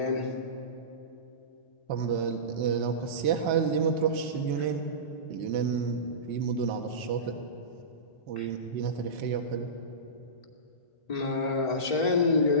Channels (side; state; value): right; late; 1.8 ms